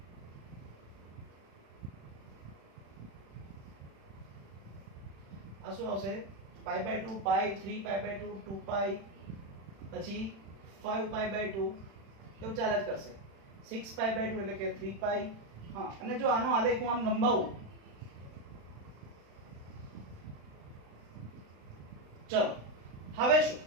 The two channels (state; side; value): late; left; 36 ms